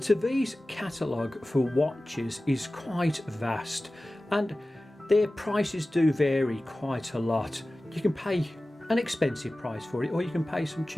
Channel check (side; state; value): both; normal; correlation 0.96